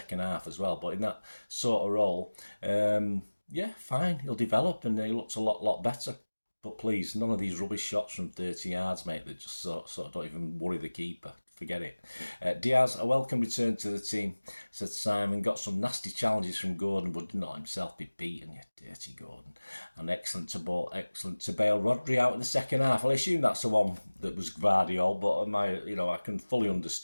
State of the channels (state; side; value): inverted; both; correlation -1.00